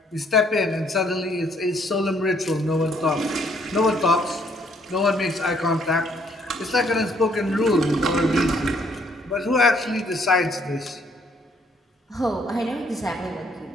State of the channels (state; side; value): normal; both; correlation 0.66